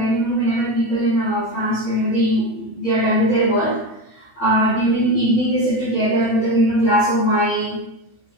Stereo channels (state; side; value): late; right; 18 ms